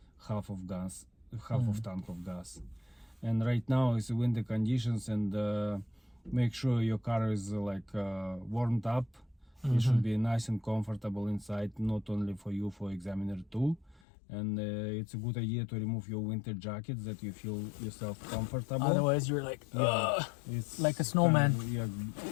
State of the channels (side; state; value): right; drops out; at 14.0 s